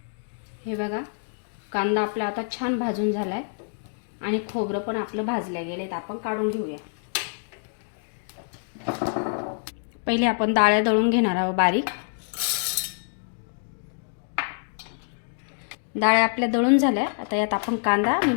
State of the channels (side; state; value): right; silent; digital silence